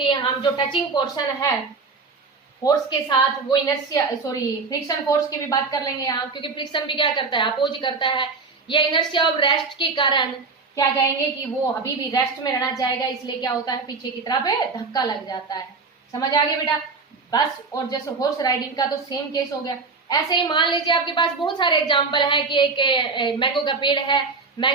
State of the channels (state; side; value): quieter; left; 4.3 dB